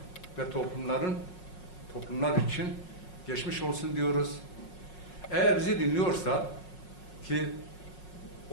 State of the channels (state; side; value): late; right; 5.5 ms